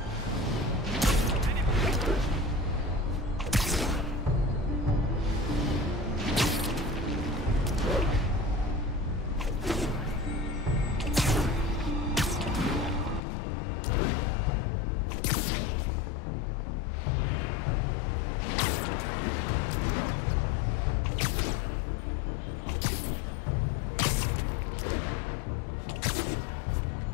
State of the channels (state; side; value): drops out; right; at 13.2 s